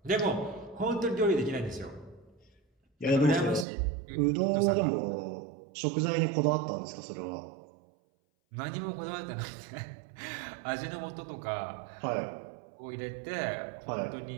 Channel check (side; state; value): left; drops out; at 3.7 s